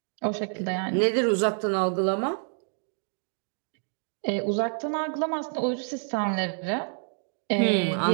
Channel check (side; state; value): left; silent; 58 dB below the other